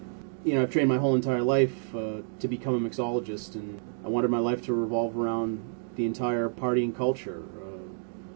You know, I've trained my whole entire life to become a mixologist, and I wanted my life to revolve around the entire partying culture,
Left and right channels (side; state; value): left; silent; digital silence